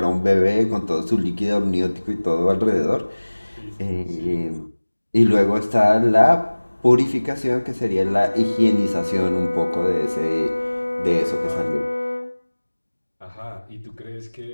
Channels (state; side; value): inverted; both; correlation -1.00